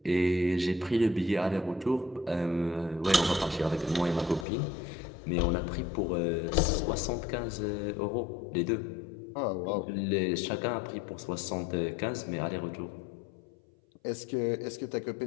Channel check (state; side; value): drops out; right; at 4.5 s